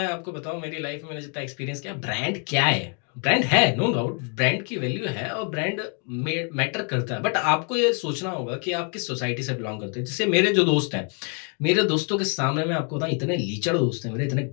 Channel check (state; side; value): quieter; right; 39.9 dB